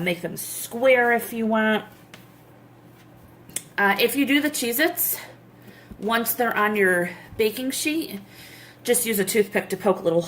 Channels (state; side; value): identical; both; correlation 1.00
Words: them square if you want. If you do the Cheez-Its, once they're on your baking sheet, just use a toothpick to poke little